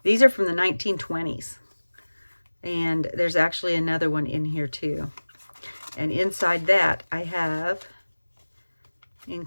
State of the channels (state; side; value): inverted; both; correlation -1.00